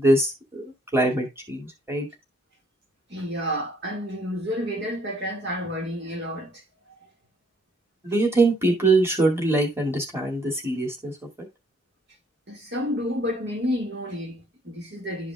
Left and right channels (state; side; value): normal; both; correlation 0.66